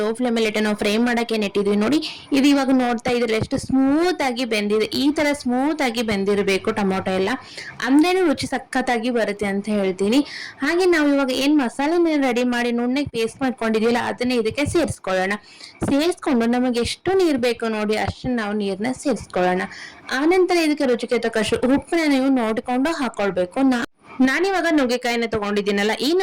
ಫ್ಲೇಮಲ್ಲಿ ಇಟ್ಟು ನಾವು ಫ್ರೈ ಮಾಡಕ್ಕೆ ನೆಟ್ಟಿದ್ವಿ ನೋಡಿ. ಇದು ಇವಾಗ ನೋಡ್ತಾ ಇದ್ರೆ ಎಷ್ಟು ಸ್ಮೂತ್ ಆಗಿ ಬೆಂದಿದೆ. ಈ ತರ ಸ್ಮೂತ್ ಆಗಿ ಬೆಂದಿರಬೇಕು ಟೊಮೊಟೊ ಎಲ್ಲ, ಅಂದ್ರೇನು ರುಚಿ ಸಖತ್ತಾಗಿ ಬರುತ್ತೆ ಅಂತ ಹೇಳ್ತೀನಿ. ಹಾಗೆ ನಾವು ಇವಾಗ ಏನ್ ಮಸಾಲೆನ ರೆಡಿ ಮಾಡಿ ನುಣ್ಣಗೆ ಪೇಸ್ಟ್ ಮಾಡ್ಕೊಂಡಿದೀವಲ್ಲ, ಅದನ್ನ ಇದಕ್ಕೆ ಸೇರಿಸ್ಕೊಳ್ಳೋಣ. ಸೇರಿಸ್ಕೊಂಡು ನಮಗೆ ಎಷ್ಟು ನೀರು ಬೇಕು ನೋಡಿ ಅಷ್ಟು ನಾವು ನೀರನ್ನ ಸೇರಿಸ್ಕೊಳ್ಳೋಣ. ಆನಂತರ ಇದಕ್ಕೆ ರುಚಿಗೆ ತಕ್ಕಷ್ಟು ಉಪ್ಪನ್ನ ನೀವು ನೋಡಿಕೊಂಡು ಹಾಕೊಳ್ಬೇಕು. ನಾನಿವಾಗ ನುಗ್ಗೆಕಾಯಿನ ತಗೊಂಡಿದ್ದೀನಲ್ಲ, ಈ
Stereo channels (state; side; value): identical; both; correlation 1.00